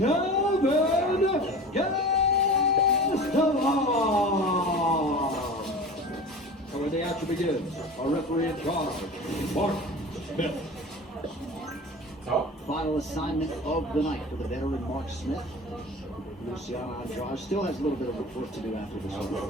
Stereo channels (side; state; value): both; normal; correlation 0.36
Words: Gastelum. And when the action begins, our referee in charge, Mark Smith. Final assignment of the night for the veteran Mark Smith. Luciano Andrade still has a little bit of work to do after this